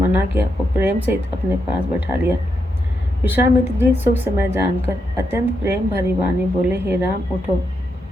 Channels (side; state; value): both; normal; correlation 0.82